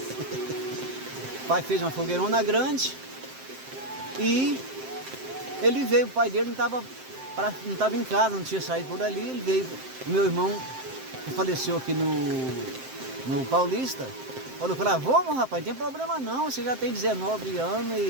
O pai fez uma fogueirona grande e ele veio, o pai dele não estava em casa, não tinha saído por ali, ele veio. Meu irmão, que faleceu aqui no Paulista, falou para ele: vamos, rapaz, não tem problema não, você já tem 19 anos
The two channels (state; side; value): late; left; 7.7 ms